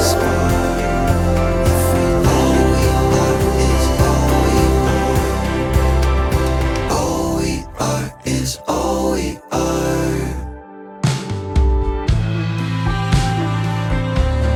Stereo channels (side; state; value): both; identical; correlation 1.00